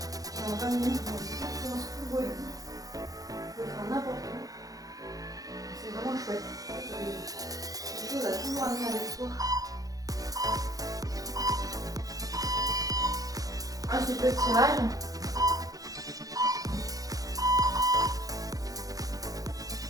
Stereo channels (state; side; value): late; left; 0.17 ms